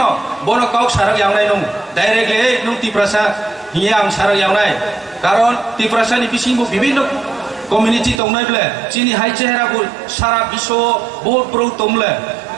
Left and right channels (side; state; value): left; drops out; at 8.2 s